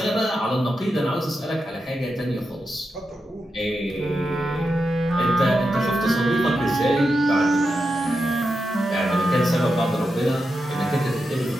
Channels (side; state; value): both; normal; correlation 0.88